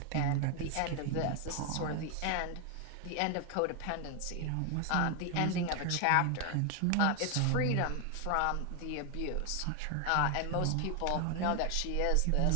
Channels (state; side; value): different; both; correlation 0.01